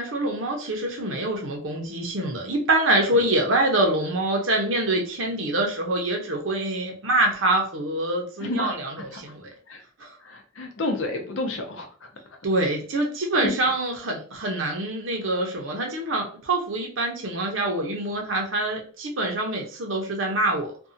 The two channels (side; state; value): both; normal; correlation 0.01